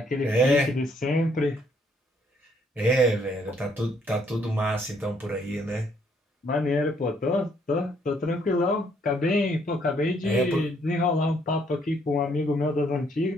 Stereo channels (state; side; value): normal; both; correlation 0.68